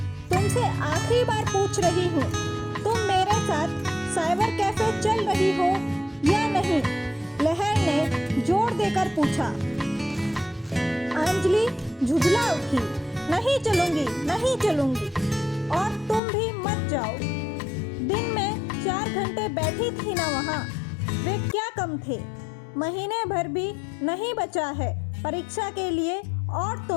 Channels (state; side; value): drops out; right; at 16.2 s